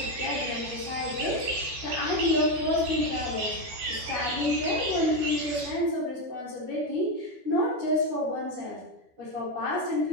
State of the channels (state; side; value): late; left; 12 ms